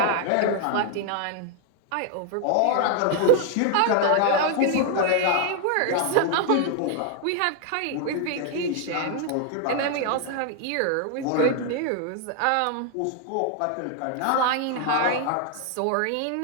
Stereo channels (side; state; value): both; different; correlation 0.00